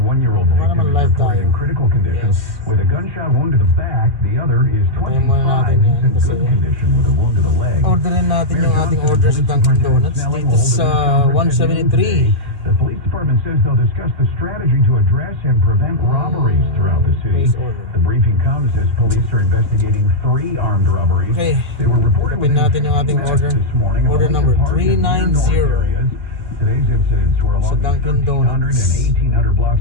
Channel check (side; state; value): left; late; 2.3 ms